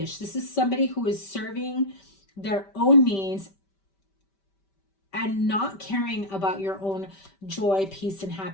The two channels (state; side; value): late; right; 5.1 ms